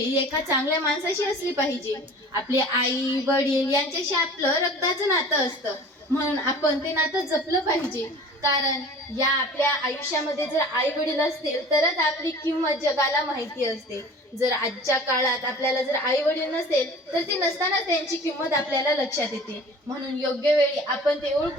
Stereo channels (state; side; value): normal; both; correlation 0.43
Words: एका चांगल्या माणसाशी असली पाहिजे. आपले आई वडील यांच्याशी आपलं रक्ताचं नातं असतं, म्हणून आपण ते नातं जपलं पाहिजे. कारण या आपल्या आयुष्यामध्ये जर आई वडील असतील तरच आपली किंमत जगाला माहिती असते. जर आजच्या काळात आपल्याला जर आई वडील नसेल तर ते नसताना त्यांची किंमत आपल्याला लक्षात येते. म्हणून योग्य वेळी आपण ते